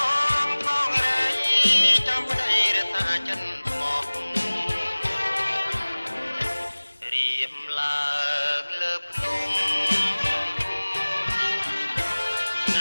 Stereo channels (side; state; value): both; inverted; correlation -1.00